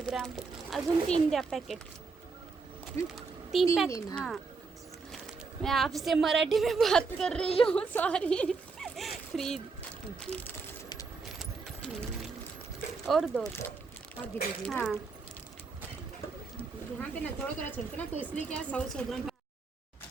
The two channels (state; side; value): quieter; left; 4.5 dB